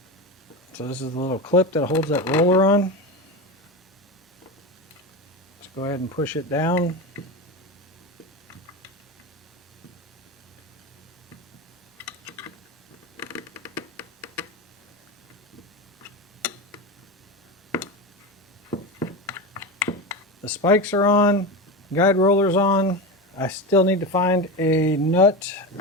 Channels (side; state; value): both; normal; correlation 0.21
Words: So this is the little clip that holds that roller on. Let's go ahead and push it down. The spikes are on, guide roller's on. I still need to find a nut